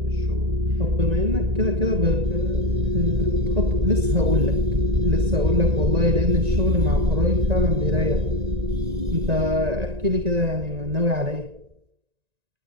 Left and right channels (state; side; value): late; left; 1.9 ms